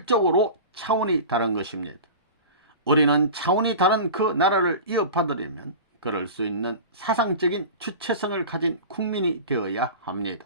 차원이 다른 것입니다. 우리는 차원이 다른 그 나라를 이어받으려면 그럴 수 있는 사상적인 주체성을 가진 국민이 되어야 합니다.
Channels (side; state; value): both; inverted; correlation -0.33